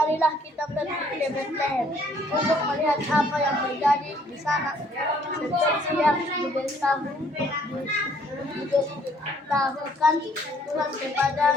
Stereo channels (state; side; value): normal; both; correlation 0.63